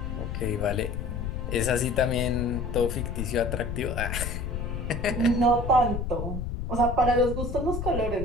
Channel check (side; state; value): left; noise; rumble, 4 dB below the sound